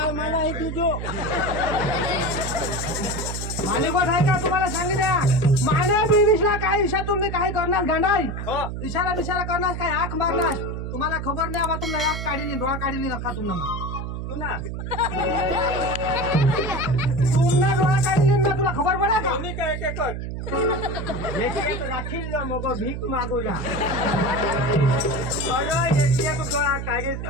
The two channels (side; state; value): right; noise; hum, 5 dB below the sound